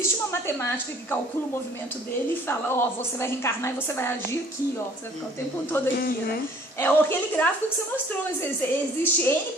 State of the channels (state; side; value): normal; both; correlation 0.55